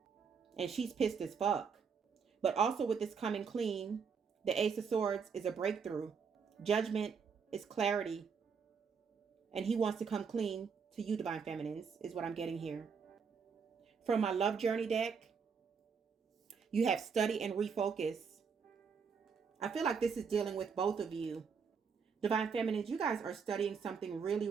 And she's pissed as fuck. But also with this coming clean, the Ace of Swords is a breakthrough. Judgment is clarity. And he wants to come clean to you, divine feminines, is what I'm getting here. From my love journey deck, you have study and refocus. I feel like this is dealing with both of you. Divine feminines, you guys are studying something really,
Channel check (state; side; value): quieter; left; 6.0 dB